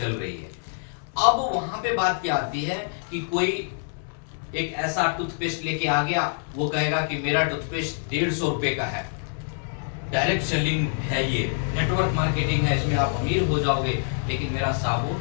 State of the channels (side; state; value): right; silent; digital silence